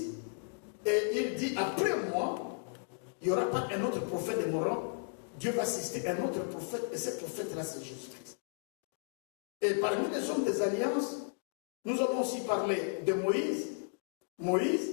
et il dit, après moi, il n'y aura pas un autre prophète de mon rang, Dieu va citer un autre prophète, et ce prophète-là, c'est Jésus-Christ. Et parmi les hommes des alliances, nous allons aussi parler de Moïse,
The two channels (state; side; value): silent; right; digital silence